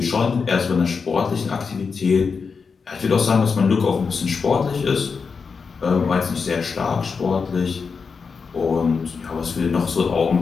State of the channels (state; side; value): quieter; right; 5.3 dB